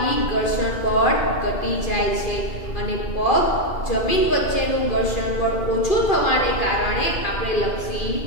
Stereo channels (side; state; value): right; late; 2.4 ms